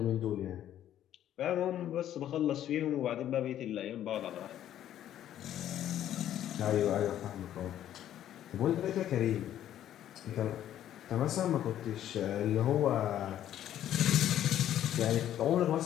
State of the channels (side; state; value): right; quieter; 11.4 dB